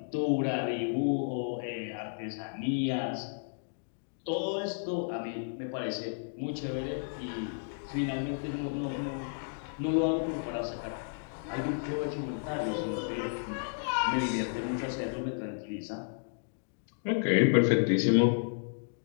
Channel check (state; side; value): silent; right; digital silence